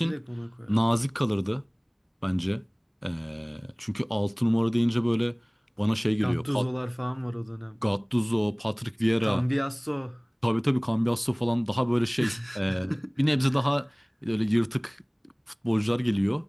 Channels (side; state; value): both; identical; correlation 1.00